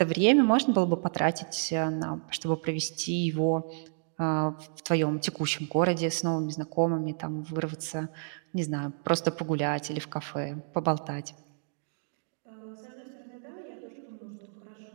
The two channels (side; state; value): left; silent; digital silence